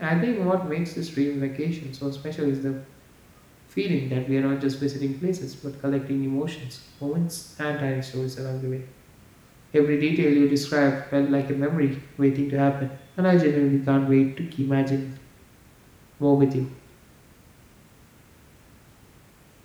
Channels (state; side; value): identical; both; correlation 1.00